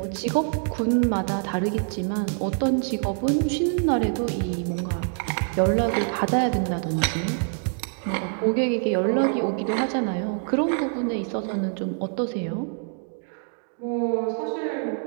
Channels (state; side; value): silent; left; 56 dB below the other